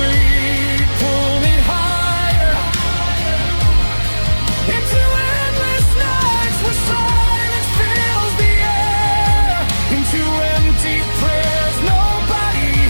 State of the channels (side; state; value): both; inverted; correlation -1.00